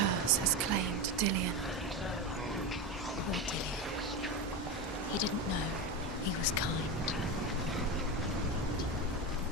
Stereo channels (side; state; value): both; normal; correlation 0.18